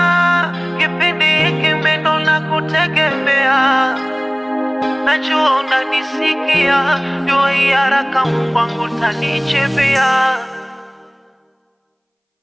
kipindi hiki mindo na kutegemea. Najua unanisikia, dua hii haraka Mungu wangu tanichipia.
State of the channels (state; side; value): identical; both; correlation 1.00